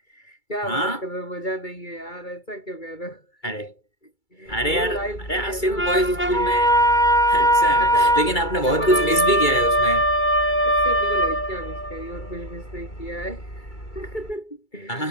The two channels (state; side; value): late; right; 2.3 ms